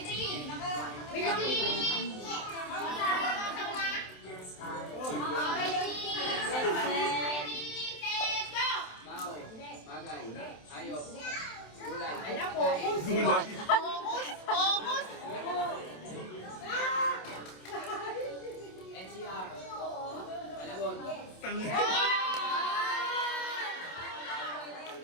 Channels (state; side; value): late; right; 27 ms